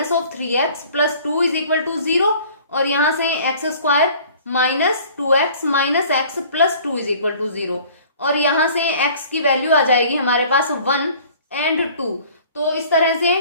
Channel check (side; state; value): both; inverted; correlation -0.50